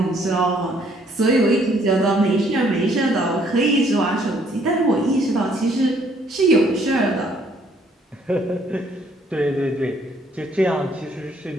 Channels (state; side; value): normal; both; correlation 0.65